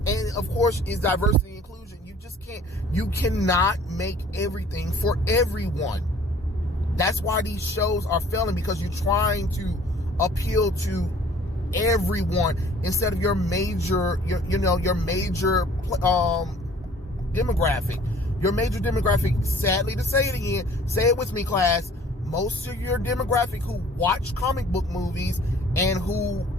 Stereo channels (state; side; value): normal; both; correlation 0.53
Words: of course, is diversity and inclusion. You just You cannot make everything for everyone. That's why these shows are failing, because you're trying to appeal to everyone instead of your major demographic. Your major demographic, sadly to say it again, say it with me, class, most of your demographic who watch comic book movies and who